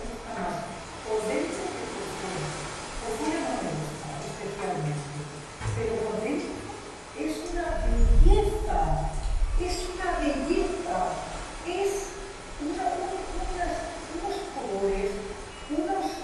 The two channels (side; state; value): both; identical; correlation 1.00